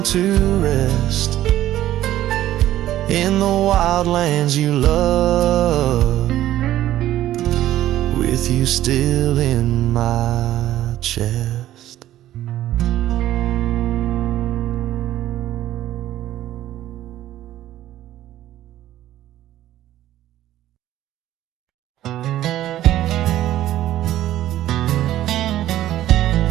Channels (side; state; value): left; quieter; 13.5 dB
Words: to rest in the wild lands you love, with you still in my chest.